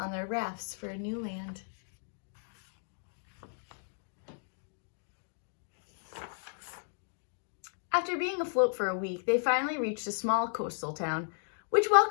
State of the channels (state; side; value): silent; right; digital silence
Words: their rafts for a new land. After being afloat for a week, they finally reached a small coastal town, which